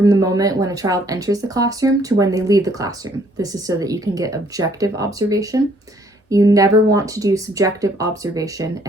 the moment when a child enters the classroom to when they leave the classroom. This is so that you can get objective observation. You never want to do subjective observation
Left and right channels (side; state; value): both; normal; correlation 0.64